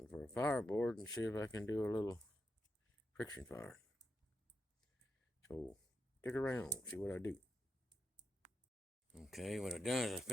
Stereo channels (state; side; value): normal; both; correlation 0.85